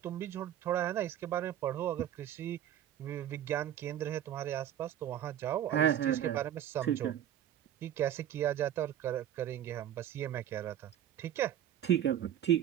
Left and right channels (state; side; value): quieter; left; 10.9 dB